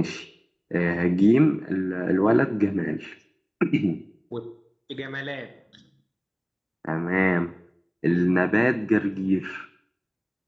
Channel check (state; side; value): identical; both; correlation 1.00